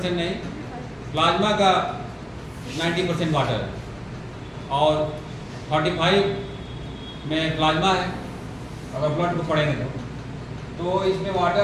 नहीं, प्लाज्मा का 90% वाटर है और 45 में प्लाज्मा है अगर ब्लड को पढ़ेंगे तो इसमें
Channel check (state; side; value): identical; both; correlation 1.00